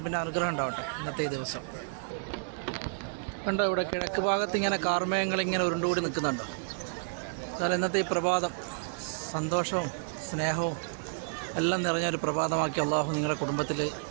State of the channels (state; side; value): silent; left; digital silence